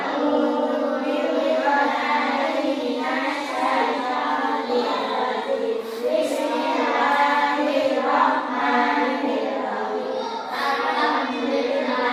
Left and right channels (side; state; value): both; identical; correlation 1.00